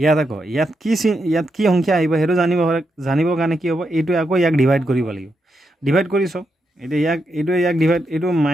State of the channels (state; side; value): normal; both; correlation 0.83